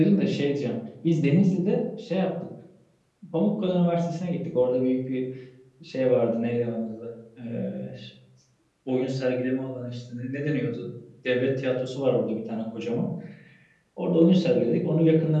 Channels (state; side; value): identical; both; correlation 1.00